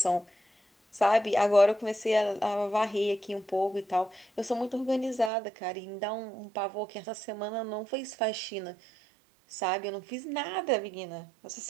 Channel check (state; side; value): drops out; left; at 5.3 s